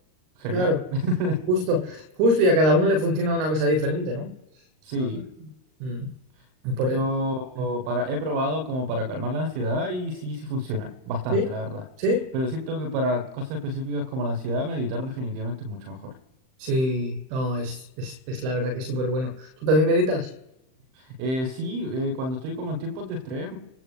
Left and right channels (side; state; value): left; late; 39 ms